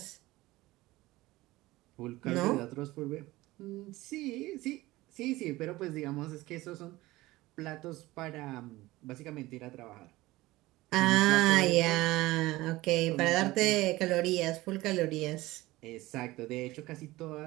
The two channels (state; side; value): quieter; left; 18.8 dB